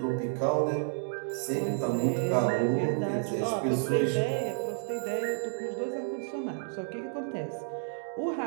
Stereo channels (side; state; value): left; silent; digital silence